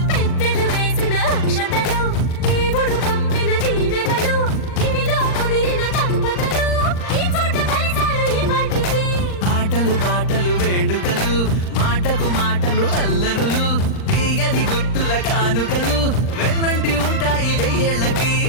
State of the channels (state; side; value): late; right; 39 ms